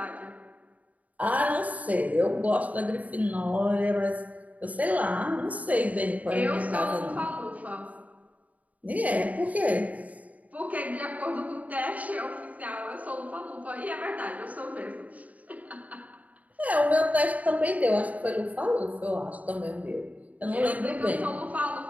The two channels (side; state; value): left; late; 0.072 ms